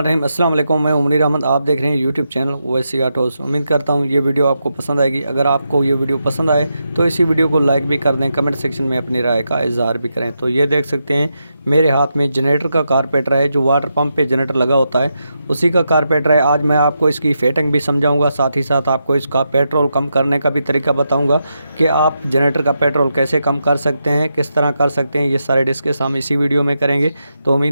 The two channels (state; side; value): inverted; both; correlation -0.85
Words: अस्सलाम वालेकुम। मैं उमरी अहमद, आप देख रहे हैं यूट्यूब चैनल ओवैसी ऑटोज़। उम्मीद करता हूँ ये वीडियो आपको पसंद आएगी। अगर आपको ये वीडियो पसंद आए तो इसी वीडियो को लाइक भी कर दें, कमेंट सेक्शन में अपनी राय का इजहार भी करें। तो ये देख सकते हैं मेरे हाथ में जनरेटर का कारपेटर है, जो वाटर पंप पे जनरेटर लगा होता है उसी का कारपेटर है। आज मैं आपको इसकी फिटिंग भी समझाऊँगा, साथ ही साथ आपको इसका पेट्रोल कम करने का भी तरीका बताऊँगा कि आप जनरेटर का पेट्रोल कैसे कम कर सकते हैं, किस तरह कर सकते हैं। ये सारे डिस्कस हम इसी वीडियो में करेंगे। तो